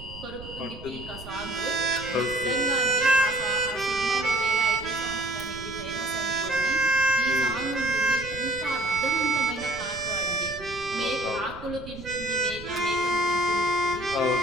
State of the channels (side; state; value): right; noise; rumble, 15 dB below the sound